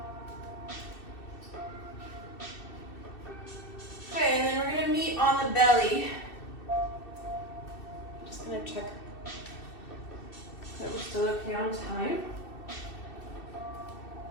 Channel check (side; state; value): right; late; 2.7 ms